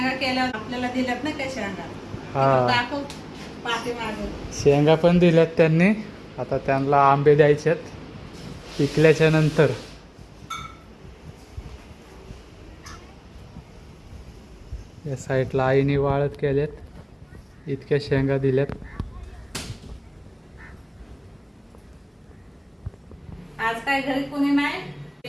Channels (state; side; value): identical; both; correlation 1.00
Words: केल्या आपल्याला दिल्यात ना काय शेंगा. हा. दाखव पाठीमागे. शेंगा पण दिल्यात त्यांनी. आता त्यांना आंबे द्यायचेत पिकल्याच्या नंतर. या साईडला आईने वाळत केल्यात. इतक्या शेंगा दिल्यात. आज काय घरी कोणी नाही.